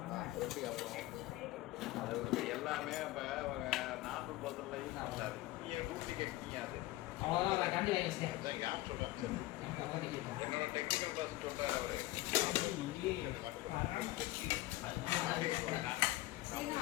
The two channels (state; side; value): quieter; right; 17.6 dB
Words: எல்லாமே நாட்டு பொருள் என்னோட டெக்னிக்கல் பர்சன் சொல்றாரு அவரு.